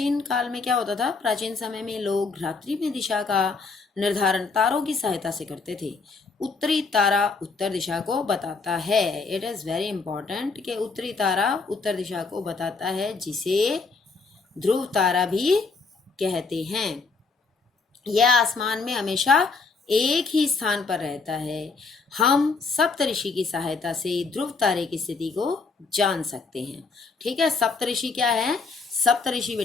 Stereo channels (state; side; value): quieter; right; 4.4 dB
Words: काल में क्या होता था, प्राचीन समय में लोग रात्रि में दिशा का निर्धारण तारों की सहायता से करते थे। उत्तरी तारा उत्तर दिशा को बताता है, इट इज़ वेरी इंपॉर्टेंट कि उत्तरी तारा उत्तर दिशा को बताता है, जिसे ध्रुव तारा भी कहते हैं। यह आसमान में हमेशा एक ही स्थान पर रहता है। हम सप्तऋषि की सहायता से ध्रुव तारे की स्थिति को जान सकते हैं। ठीक है, सप्तऋषि क्या है, सप्तऋषि